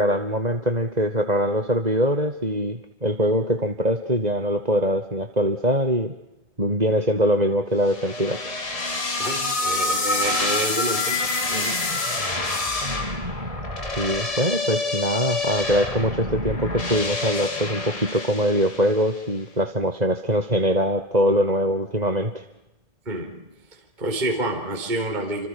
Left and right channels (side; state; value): left; late; 1.7 ms